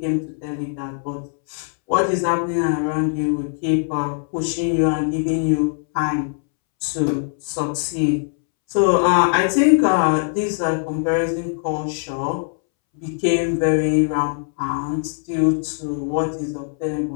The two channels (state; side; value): silent; right; 65 dB below the other